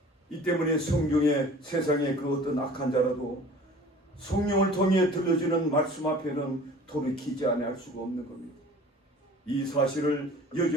이 때문에 성경에 세상의 그 어떤 악한 자라도 성령을 통해 들려주는 말씀 앞에는 돌이키지 않을 수가 없는 겁니다. 이 사실을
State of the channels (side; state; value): both; normal; correlation 0.46